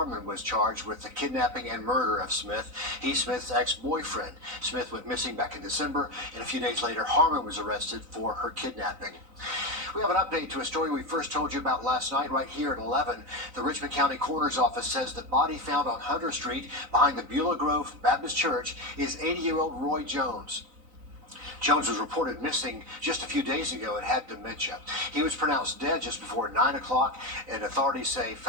was charged with the kidnapping and murder of Smith. He's Smith's ex-boyfriend. Smith went missing back in December, and a few days later, Harmon was arrested for her kidnapping. We have an update to a story we first told you about last night right here at 11. The Richmond County Coroner's Office says the body found on Hunter Street behind the Beulah Grove Baptist Church is 80-year-old Roy Jones. Jones was reported missing just a few days ago and had dementia. He was pronounced dead just before 9 o'clock, and authorities say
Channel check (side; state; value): left; late; 3.9 ms